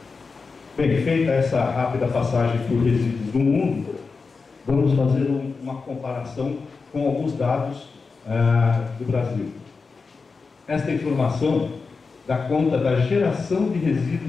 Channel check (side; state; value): right; quieter; 4.6 dB